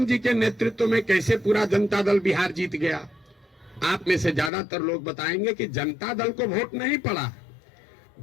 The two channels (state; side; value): drops out; right; at 4.5 s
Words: जी के नेतृत्व में कैसे पूरा जनता दल बिहार जीत गया। आप में से ज्यादातर लोग बताएंगे कि जनता दल को वोट नहीं पड़ा,